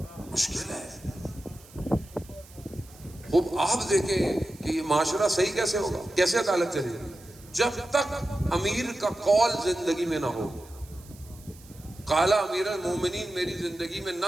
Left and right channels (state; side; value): noise; right; hiss, 23 dB below the sound